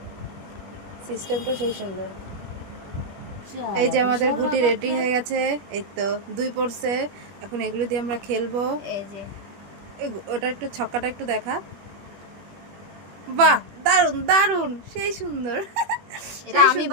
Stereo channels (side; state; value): left; late; 21 ms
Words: সিস্টেমটা সেই সুন্দর। এই যে আমাদের গুটি রেডি হয়ে গেছে, এই তো 2 পড়ছে। এখন এগুলো দিয়ে আমরা খেলবো। এই যে ওটা একটু ছক্কাটা একটু দেখা। বাহ, দারুণ দারুণ, সেই সুন্দর। এটা আমি